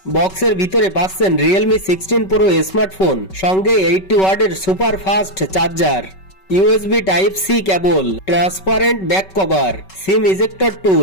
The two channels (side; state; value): right; late; 5.3 ms